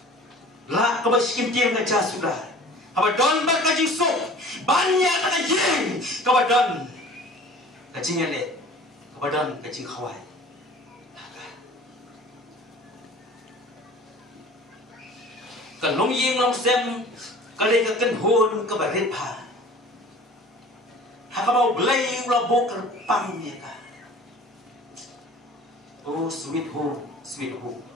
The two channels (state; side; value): normal; both; correlation 0.45